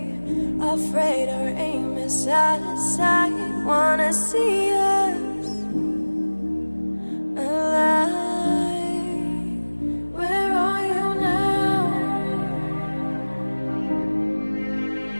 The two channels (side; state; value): both; inverted; correlation -1.00